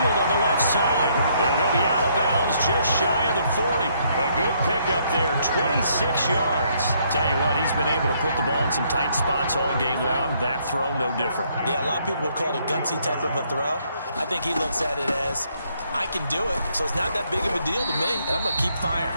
on the left side. And he'll be out of bounds just shy of the 40. A good pickup there, 26 yards. Tell you what, he's been able to put the ball in some tight spots all game long. That throw, no different. Yeah, a lot of people would call it a gutsy type of a throw. I think he looks at it as, I can do it, so it's not that big of a deal to me, and I'm going to keep firing.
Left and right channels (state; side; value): inverted; both; correlation -0.70